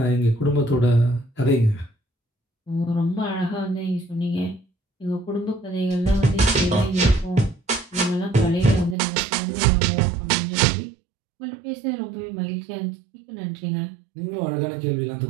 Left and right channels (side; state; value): left; drops out; at 9.0 s